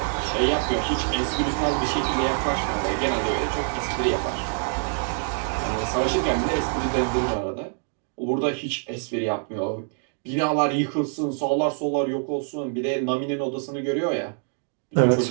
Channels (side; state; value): left; silent; 59 dB below the other